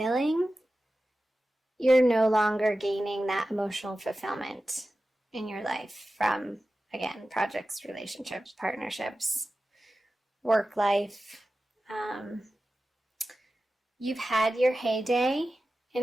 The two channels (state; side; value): normal; both; correlation 0.94